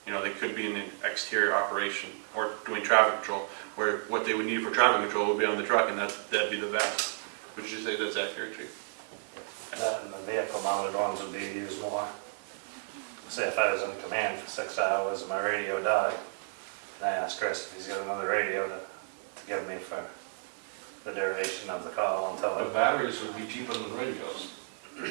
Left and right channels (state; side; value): silent; left; digital silence